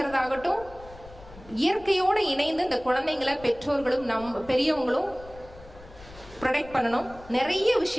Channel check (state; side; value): noise; left; rumble, 20 dB below the sound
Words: இயற்கையோடு இணைந்து இந்த குழந்தைங்களை பெற்றோர்களும் பெரியவங்களும் ப்ரொடெக்ட் பண்ணணும். நிறைய